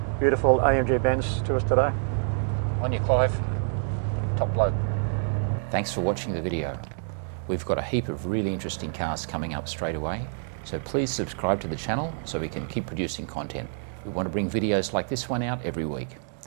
beautiful AMG Benz to us today. On you, Clive. Top bloke. Thanks for watching the video. We've got a heap of really interesting cars coming up straight away, so please subscribe to the channel so we can keep producing content. We want to bring videos like this one out every week.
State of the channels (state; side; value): silent; left; digital silence